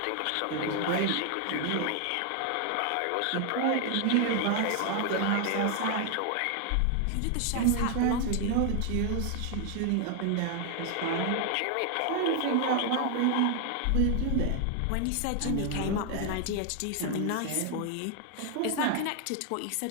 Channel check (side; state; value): both; different; correlation 0.00